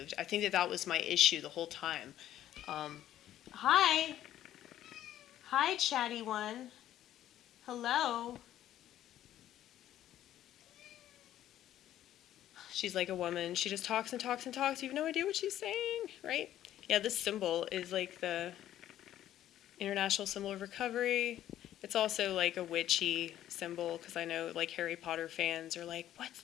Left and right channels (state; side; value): quieter; right; 12.3 dB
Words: I think that was my issue the whole time. Um, hi, hi, chatty one. Hello. She's like a woman. She just talks and talks and talks. You have no idea what she's saying, right? Yeah, this symbol is like the international symbol of recovery. It's also like a witchy symbol, because I know like Harry Potter fans are like, what's